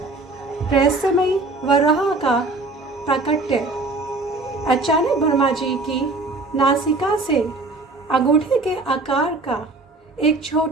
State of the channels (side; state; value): left; quieter; 3.2 dB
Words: रहस्यमयी वराह का प्राकट्य। अचानक ब्रह्मा जी की नासिका से अंगूठे के आकार का एक